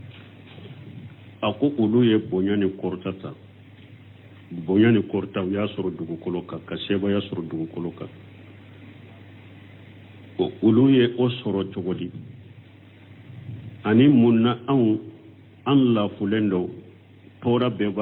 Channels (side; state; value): both; identical; correlation 1.00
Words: ako ulu ye bonyani kortata bonyani korta ya soro dugu koloka ka seba ya soro dugu koloka o ulu ye o soro jogodi ani munna an la fulendo tora be